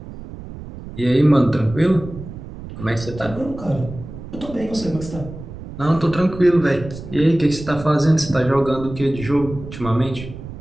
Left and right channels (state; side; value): noise; right; rumble, 12 dB below the sound